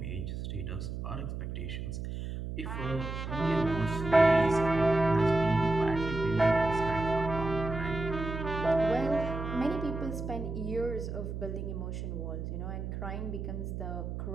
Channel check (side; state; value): right; noise; hum, 5 dB below the sound